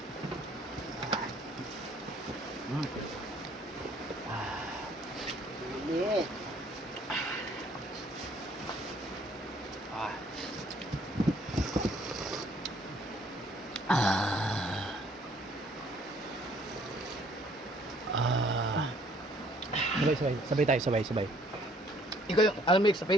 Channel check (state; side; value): normal; both; correlation 0.61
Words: Sabay tayo, sabay. Ikaw yung almix sa